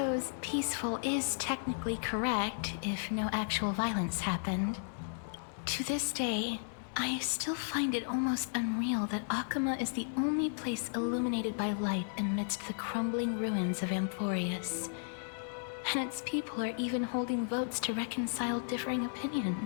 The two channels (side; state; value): right; silent; 55 dB below the other